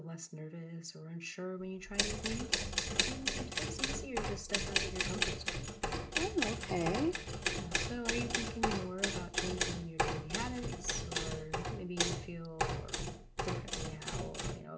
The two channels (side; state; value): both; identical; correlation 1.00